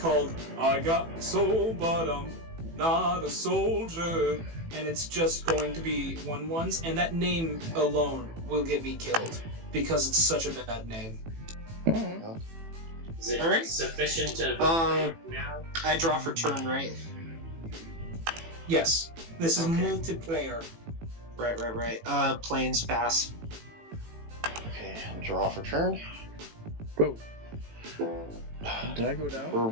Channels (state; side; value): late; left; 18 ms